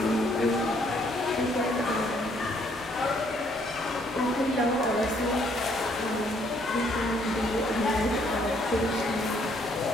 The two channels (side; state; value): both; normal; correlation 0.67